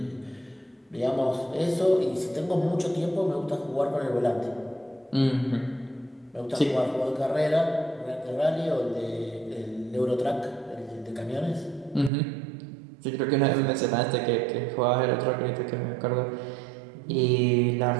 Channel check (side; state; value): left; drops out; at 12.1 s